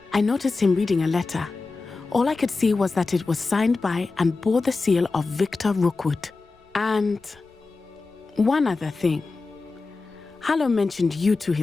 I noticed him reading a letter. All I could see was that it was signed by and bore the seal of Victor Rookwood. And one other thing. Harlow mentioned you to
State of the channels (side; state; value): right; quieter; 3.9 dB